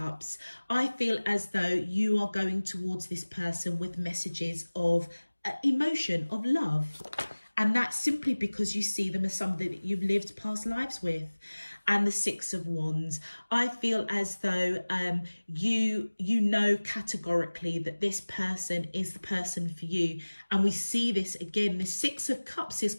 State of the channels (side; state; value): both; inverted; correlation -1.00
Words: I feel as though you are going towards this person with messages of emotion, of love. And that's simply because you see them as somebody that you've lived past lives with. And the 6 of Wands, I feel as though you know categorically that this person is the person for you. And we see this again, the 6 of Cups is